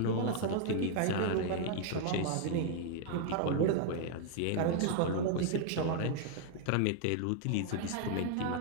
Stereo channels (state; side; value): different; both; correlation 0.00